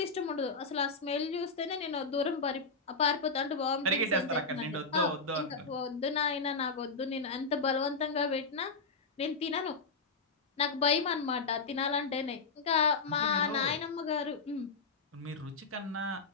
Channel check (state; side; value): quieter; right; 4.2 dB